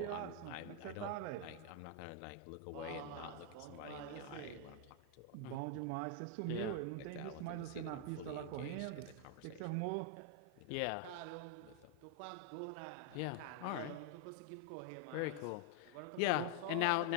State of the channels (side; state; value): both; different; correlation 0.00